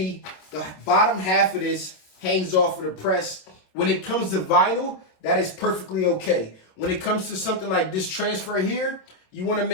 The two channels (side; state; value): right; late; 27 ms